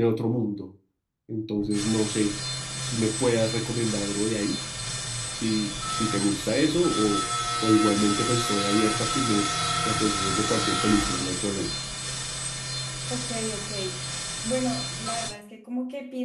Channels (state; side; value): identical; both; correlation 1.00